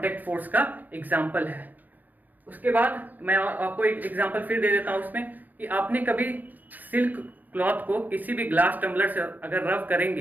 फोर्स का एग्जाम्पल है। उसके बाद मैं आपको एक एग्जाम्पल फिर दे देता हूँ उसमें, कि आपने कभी सिल्क क्लॉथ को किसी भी ग्लास टम्बलर से अगर रब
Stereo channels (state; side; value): late; left; 0.083 ms